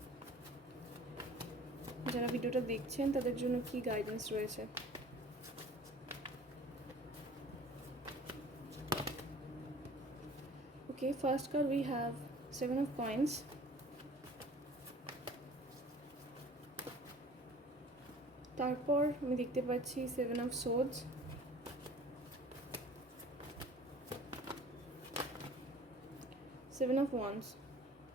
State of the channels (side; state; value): both; normal; correlation 0.47